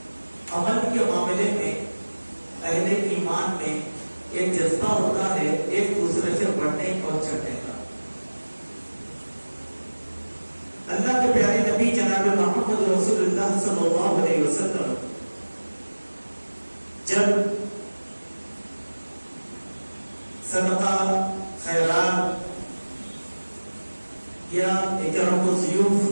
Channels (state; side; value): inverted; both; correlation -1.00